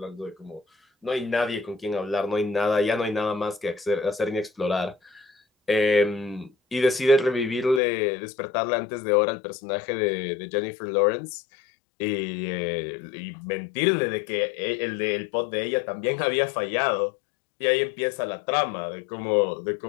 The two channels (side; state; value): right; drops out; at 7.8 s